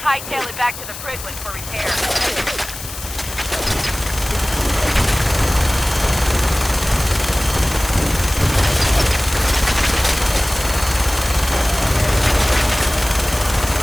Hightail it back to the Prydwen for repair.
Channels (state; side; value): noise; left; hiss, 11 dB below the sound